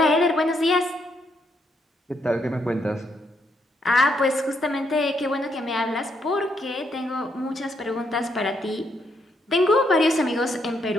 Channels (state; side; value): normal; both; correlation 0.76